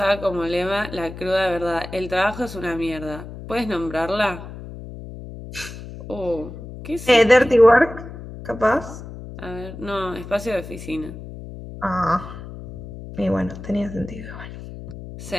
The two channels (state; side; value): noise; left; hum, 12 dB below the sound